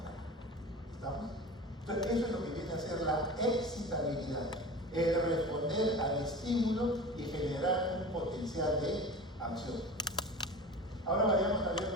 ¿Estamos? Entonces, eso es lo que viene a ser la excitabilidad, el responder al estímulo y generar un potencial de acción. Ahora vayamos a ver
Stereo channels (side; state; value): both; normal; correlation 0.34